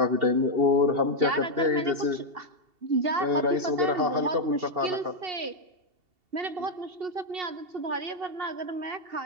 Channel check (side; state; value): left; late; 2.7 ms